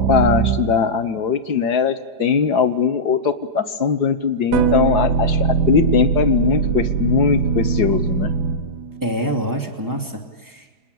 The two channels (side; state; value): left; late; 4.8 ms